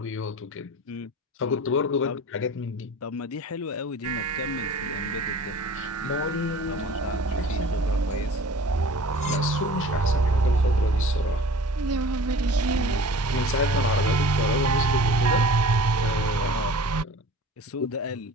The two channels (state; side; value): normal; both; correlation 0.43